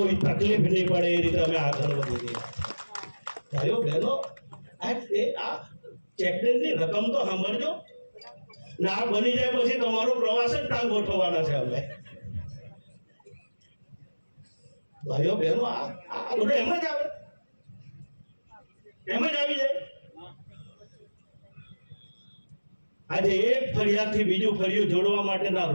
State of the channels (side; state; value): both; inverted; correlation -1.00